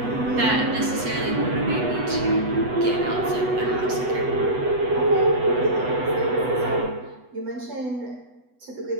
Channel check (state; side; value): late; left; 8.1 ms